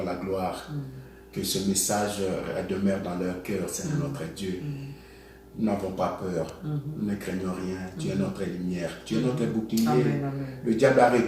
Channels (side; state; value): both; identical; correlation 1.00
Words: la gloire. Que ce message demeure dans leur cœur, Seigneur notre Dieu. Nous n'avons pas peur, nous ne craignons rien. Tu es notre lumière, tu es notre bouclier. Amen, amen. Le diable a